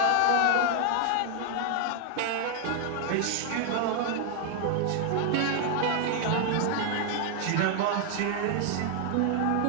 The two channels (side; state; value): both; different; correlation 0.00